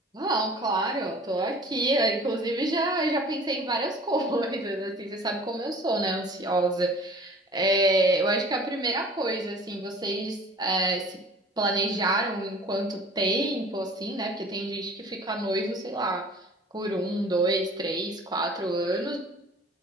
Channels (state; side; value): normal; both; correlation 0.47